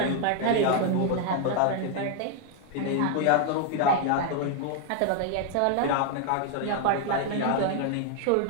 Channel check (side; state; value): both; different; correlation 0.00